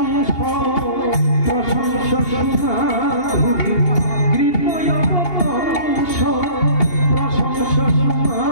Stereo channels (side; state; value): right; late; 2.8 ms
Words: প্রশংস সুমাধুরী, কৃতয় বংশ প্রশংস